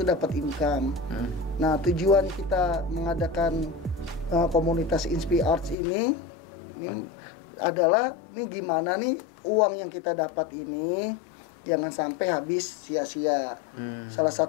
dapat income. Nah tujuan kita mengadakan komunitas Inspiart ini adalah nih gimana nih uang yang kita dapat ini jangan sampai habis sia-sia. Salah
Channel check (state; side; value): drops out; right; at 5.8 s